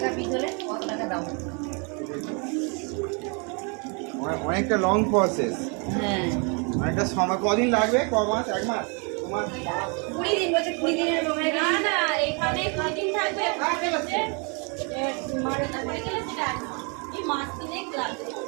পিস হলে কত টাকা দাম? অনেকটা লং প্রসেস, হ্যাঁ অনেকটা সময়। কদিন লাগবে? ক মাস? 1 মাস? 2 মাস? 20 দিন বলছে 20 দিনের সময় না না এখানে কদিন থাকবে মারে পড়ে গেলে সেটা এই মাছ কিনে লাগবে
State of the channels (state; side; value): quieter; left; 34.5 dB